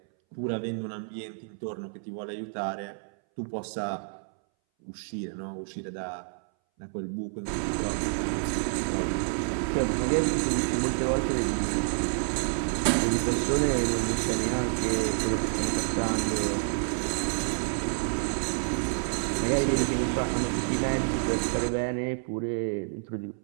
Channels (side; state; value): left; silent; 59 dB below the other